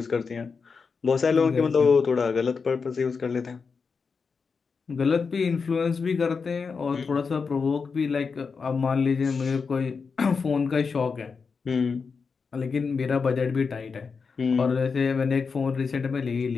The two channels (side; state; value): right; quieter; 5.2 dB